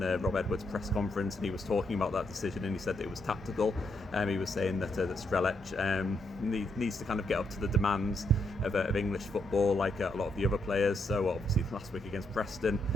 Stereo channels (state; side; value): normal; both; correlation 0.76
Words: Rob Edwards' press conference, and he was talking about that decision, and he said that it was tactical. He was saying that Strelec needs to kind of get up to the demands of English football, like a lot of the other players. So obviously last week against Preston,